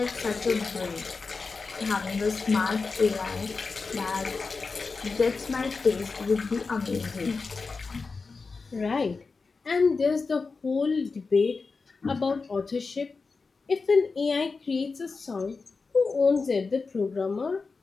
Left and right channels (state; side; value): quieter; right; 4.4 dB